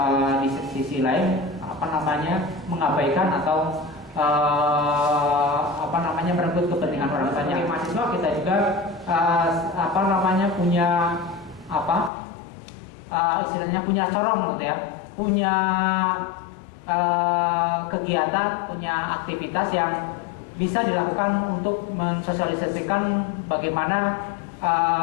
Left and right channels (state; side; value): drops out; right; at 12.1 s